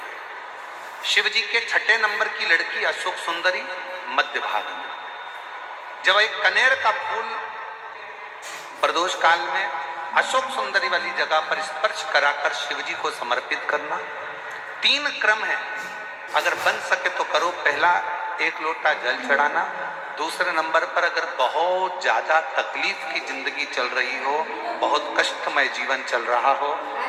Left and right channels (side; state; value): both; identical; correlation 1.00